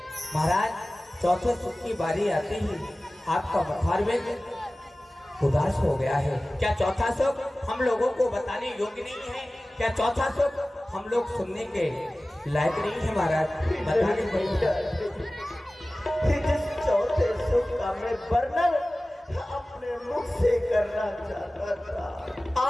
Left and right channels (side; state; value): both; normal; correlation 0.97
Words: महाराज, चौथे सुख की बारी आते ही आपका मुखारबिंद उदास हो गया है। क्या चौथा सुख हम लोगों को बताने योग्य नहीं है? क्या चौथा सुख हम लोग सुनने के लायक नहीं है? महाराज बताने जिस चौथे सुख का मैं वर्णन अपने मुख से करना चाहता था,